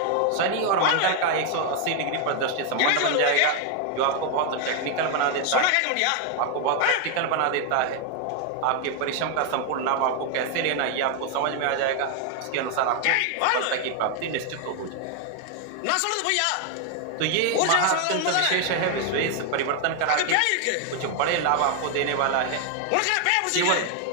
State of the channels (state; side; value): different; both; correlation 0.00